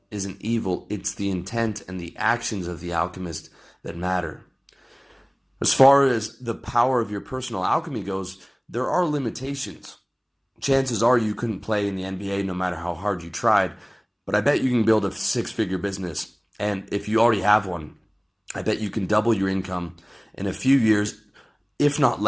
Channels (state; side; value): identical; both; correlation 1.00